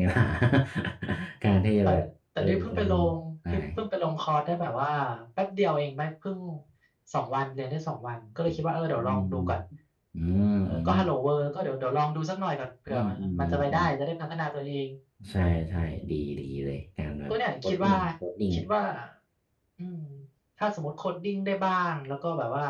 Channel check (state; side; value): identical; both; correlation 1.00